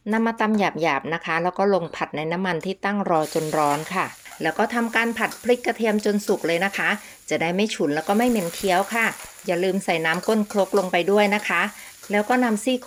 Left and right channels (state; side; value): identical; both; correlation 1.00